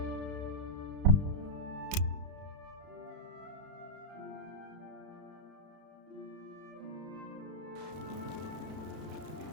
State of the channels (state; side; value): late; left; 32 ms